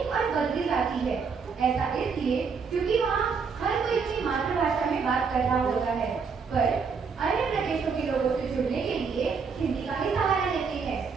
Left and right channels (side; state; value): left; quieter; 5.5 dB